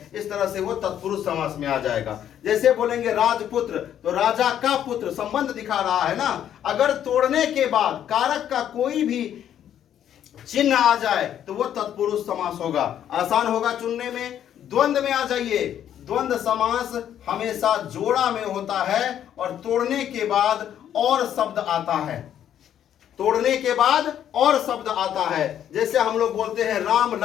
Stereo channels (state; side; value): quieter; right; 10.2 dB